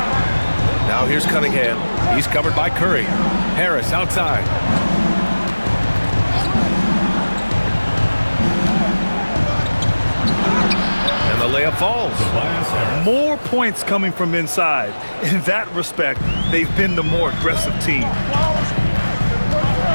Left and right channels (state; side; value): inverted; both; correlation -1.00